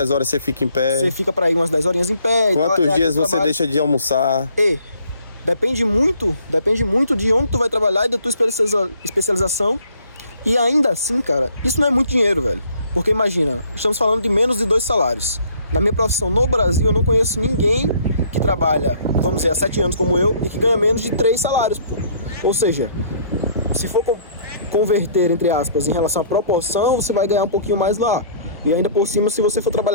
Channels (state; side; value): inverted; both; correlation -0.60